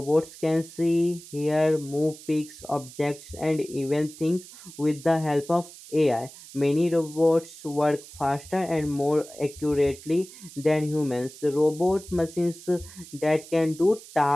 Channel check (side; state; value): right; noise; hiss, 18 dB below the sound